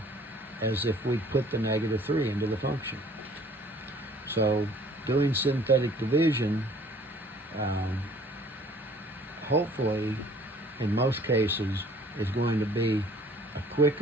as if we put the negative 3 into the function. So doing synthetic division, hopefully, in most cases, is going to be a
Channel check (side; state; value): both; normal; correlation 0.55